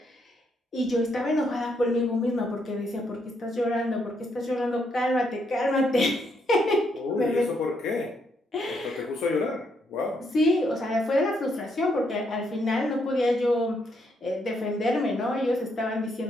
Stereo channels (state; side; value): normal; both; correlation 0.75